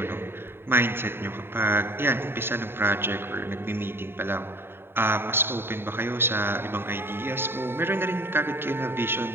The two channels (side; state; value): left; late; 0.11 ms